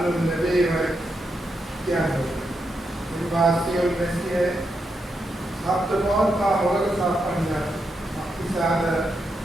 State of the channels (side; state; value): both; normal; correlation 0.83